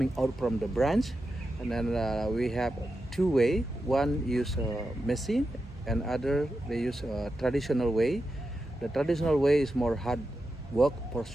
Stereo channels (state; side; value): normal; both; correlation 0.89